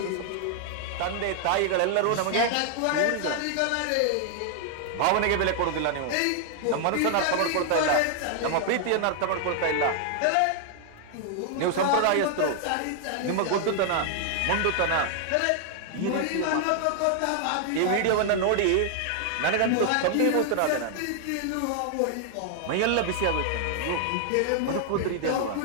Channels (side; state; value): both; different; correlation 0.00